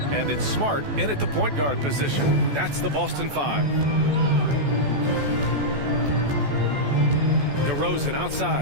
And it's Smart in at the point guard position. That's the Boston 5. DeRozan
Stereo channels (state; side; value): late; left; 14 ms